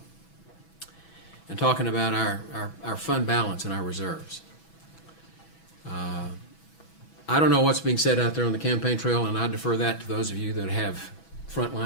and talking about our fund balance and our reserves. I don't know what's being said out there on the campaign trail, and I defer that to those of you that have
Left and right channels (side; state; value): right; late; 6.1 ms